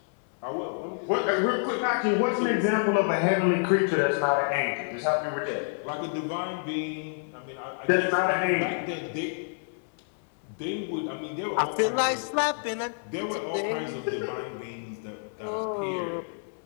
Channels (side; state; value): right; silent; 59 dB below the other